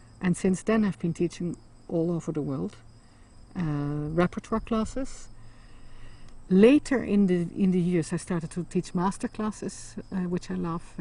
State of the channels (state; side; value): identical; both; correlation 1.00